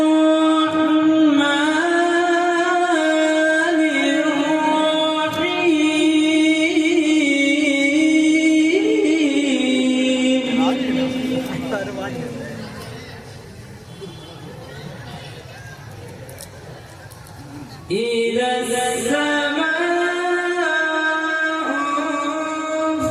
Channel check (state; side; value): identical; both; correlation 1.00